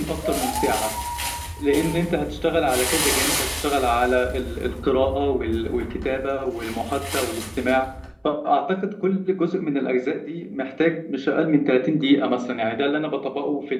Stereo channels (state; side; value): identical; both; correlation 1.00